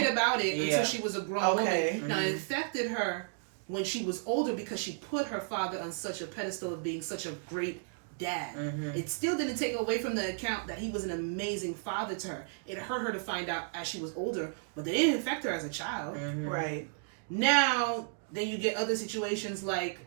about it until she was a grown woman. Mm-hmm. Now it affected her when she was older because she put her father on such a pedestal of being such a great dad. Mm-hmm. It still didn't take away from the account that he was an amazing father to her. It hurt her to find out as she was older, but they didn't affect her as a child. Mm-hmm. Right. Now, then you get other situations like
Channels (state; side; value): silent; left; digital silence